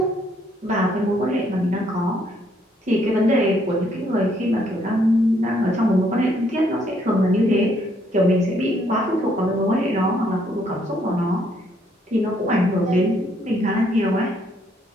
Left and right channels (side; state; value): both; normal; correlation 0.69